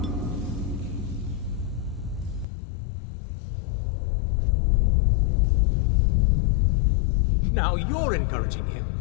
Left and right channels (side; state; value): right; drops out; at 2.5 s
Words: Now you're encouraging him.